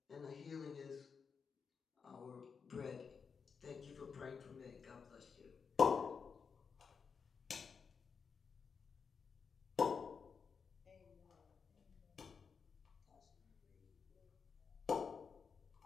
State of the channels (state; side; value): quieter; right; 5.9 dB